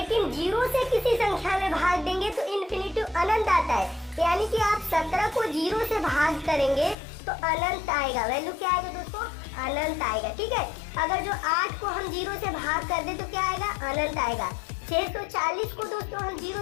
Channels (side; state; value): right; drops out; at 7.0 s